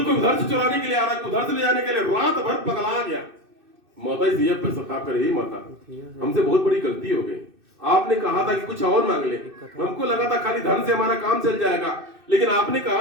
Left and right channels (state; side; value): late; left; 2.6 ms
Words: उधर से चुराने के लिए आ रहा है, कोई उधर से ले जाने के लिए, रात भर पगला गया। माता जी पर सता करे, ही माता हमसे बहुत बड़ी गलती हो गई। आपने कहा था कि कुछ और मांग ले, हमको लगा था खाली धन से हमारा काम चल जाएगा, लेकिन आपने